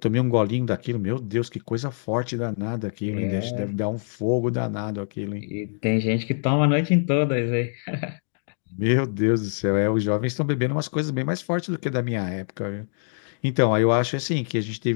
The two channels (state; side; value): silent; right; digital silence